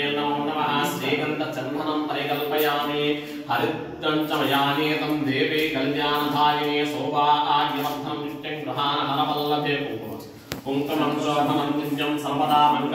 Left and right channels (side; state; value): both; identical; correlation 1.00